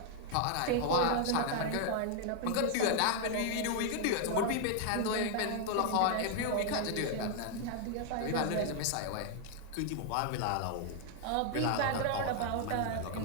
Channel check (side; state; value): both; different; correlation 0.00